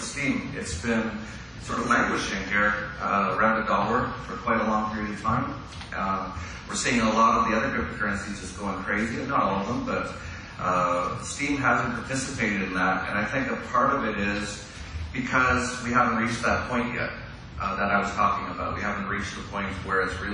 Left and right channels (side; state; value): both; identical; correlation 1.00